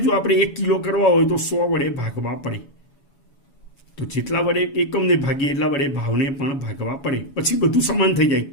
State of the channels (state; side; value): late; right; 7.1 ms